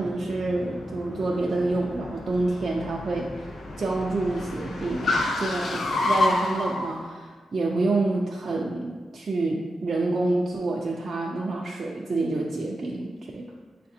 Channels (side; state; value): both; normal; correlation 0.88